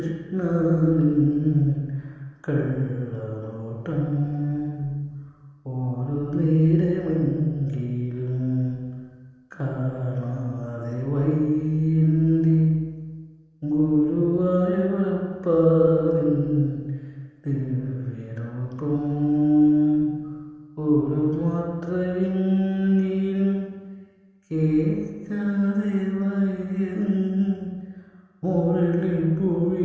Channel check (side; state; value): both; identical; correlation 1.00